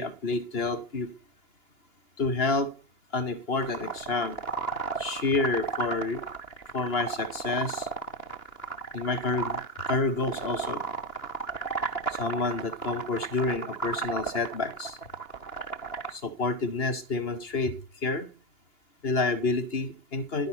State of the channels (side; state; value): right; late; 2.9 ms